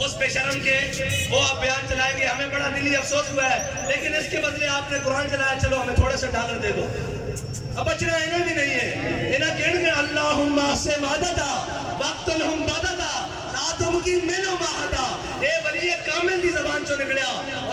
اس بے شرم کے وہ آپ بیان چلائیں گے ہمیں بڑا دلی افسوس ہوا ہے لیکن اس کے بدلے آپ نے قرآن چلایا, چلو ہمیں تھوڑا سا ڈالر دے دو. اب بچنا انہیں بھی نہیں ہے. انہیں کہنے گے اللہم سے مادتا وقت لہم بادتا لا تمکن منو ماہتا. اے ولی کامل دی زبان چو نکڑیا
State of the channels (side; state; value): both; identical; correlation 1.00